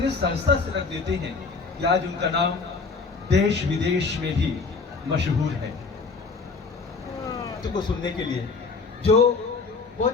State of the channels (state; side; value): quieter; right; 4.5 dB